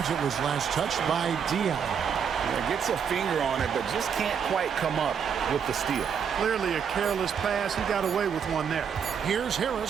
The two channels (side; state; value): left; quieter; 7.3 dB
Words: It was last touched by Diaw. Gets a finger on it, but just can't quite come up with the steal. Clearly a careless pass. He got away with one there. Here's